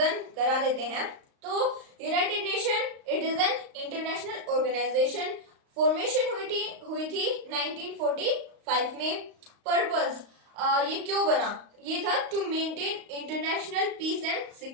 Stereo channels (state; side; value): late; left; 35 ms